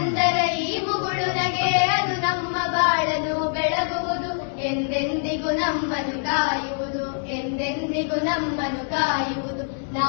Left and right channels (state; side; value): silent; right; digital silence